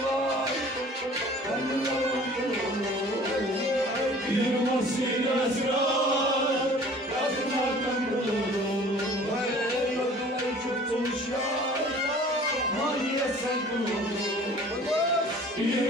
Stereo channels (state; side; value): normal; both; correlation 0.48